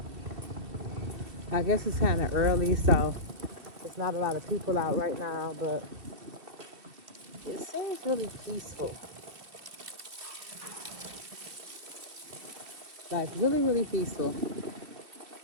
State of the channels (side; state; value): left; late; 2.6 ms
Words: I guess it's kind of early, so there's not a lot of people out right now, but it seems really peaceful. Like, really, really peaceful. These